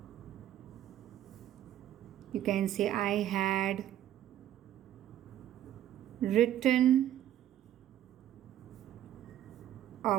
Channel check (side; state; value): left; quieter; 11.9 dB